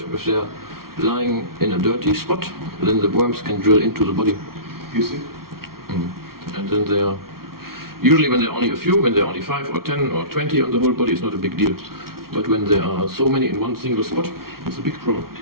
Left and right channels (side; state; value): left; late; 0.94 ms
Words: If they're lying in a dirty spot, then the worms can drill into the body. You see? And then they are, usually when there are only a few, when there are only 5 or 10 or 20 on the whole body, it's not a big deal. But when there are so many in one single spot, it's a big problem.